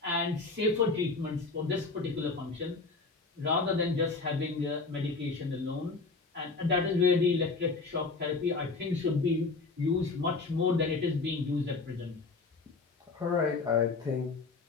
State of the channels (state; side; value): quieter; right; 4.0 dB